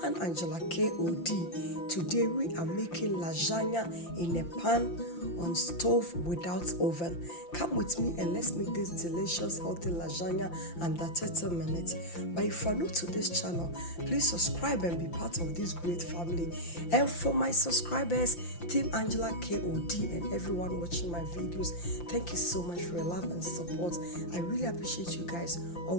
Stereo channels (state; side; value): late; right; 5.8 ms